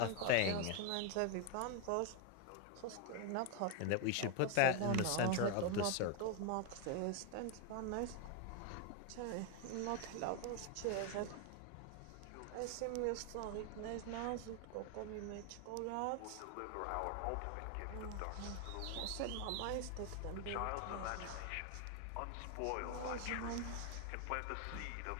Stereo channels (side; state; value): both; different; correlation 0.01